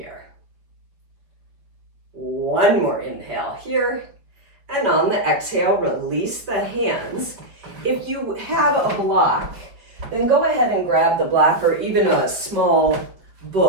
One more inhale here. And on the exhale, release the hands. If you have a block, then go ahead and grab the block or even a small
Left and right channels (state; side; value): late; left; 5.0 ms